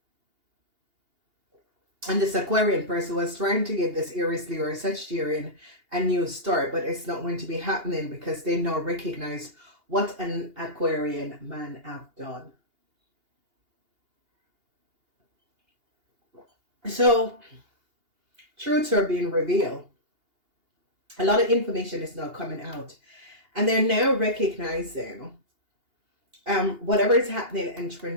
And this Aquarian person was trying to give this Aries, Leo, or Sagittarian a new start, but it's not going to be happening, because they now recognize what an Aquarian man have done. So truths are being revealed. A lot of information is now coming out, and they're now recognizing whatever is happening and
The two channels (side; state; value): left; late; 2.8 ms